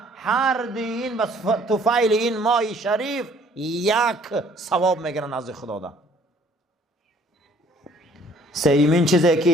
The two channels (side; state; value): both; normal; correlation 0.58